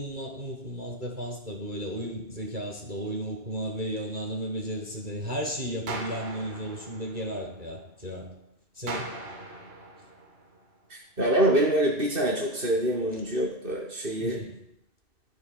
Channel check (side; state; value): left; late; 2.6 ms